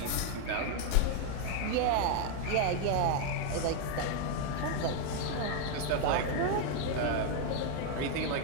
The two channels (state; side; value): different; both; correlation 0.00